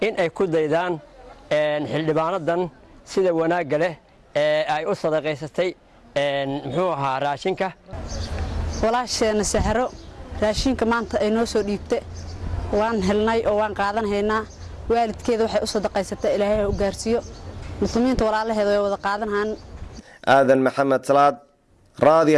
in ay ku daydaan xildhibaanadan sida wanaagga leh ee ay u sadaqaysatay muxuu ahaa raashinka walaasheena Sahro raashinka maanta ay noo soo dhiibtay waan helnay oo waan qaadanaynaa waalidkeeda waxay u sadaqaysatay Ilaahay u gaarsiyo muslimiinta walaalaheeda way wada qaadanayaan Aadan Maxamed Salaad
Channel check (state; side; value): identical; both; correlation 1.00